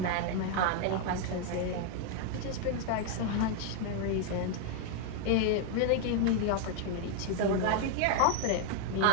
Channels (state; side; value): different; both; correlation 0.00